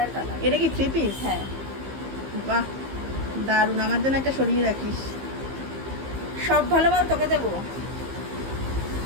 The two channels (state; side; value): late; left; 15 ms